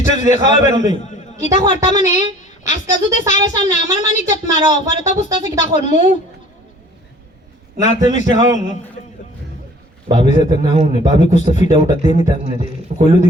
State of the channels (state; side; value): normal; both; correlation 0.51